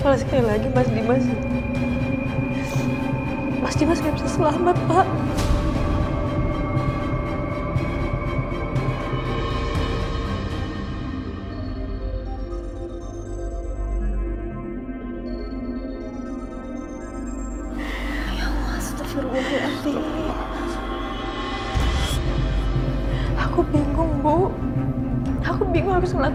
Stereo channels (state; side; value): identical; both; correlation 1.00